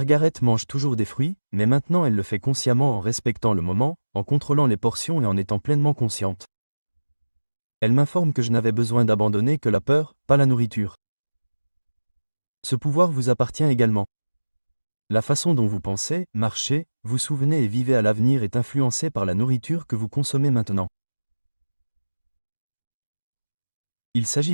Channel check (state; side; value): inverted; both; correlation -1.00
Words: mange toujours des fruits, mais maintenant elle le fait consciemment en respectant le moment, en contrôlant les portions et en étant pleinement consciente. Elle m'informe que je n'avais besoin d'abandonner que la peur, pas la nourriture. Ce pouvoir vous appartient également. La façon dont vous pensez, marchez, vous souvenez et vivez à l'avenir est influencée par la nourriture que vous consommez maintenant. Il s'agit